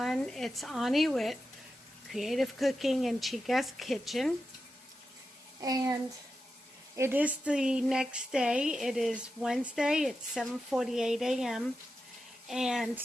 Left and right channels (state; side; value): normal; both; correlation 0.90